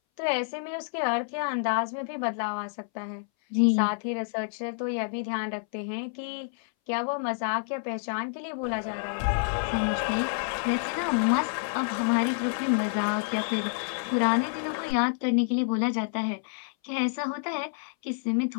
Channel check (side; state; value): right; silent; 59 dB below the other